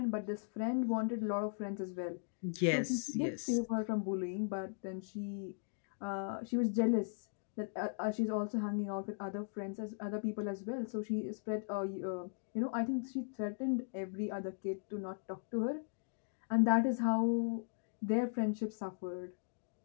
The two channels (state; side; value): silent; right; digital silence